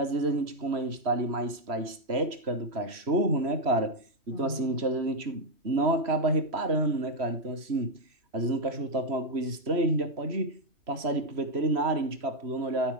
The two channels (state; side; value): late; left; 3.0 ms